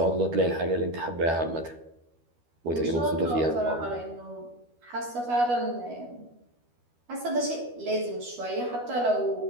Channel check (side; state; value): left; late; 12 ms